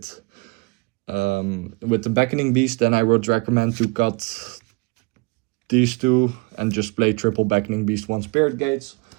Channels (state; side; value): quieter; left; 27.7 dB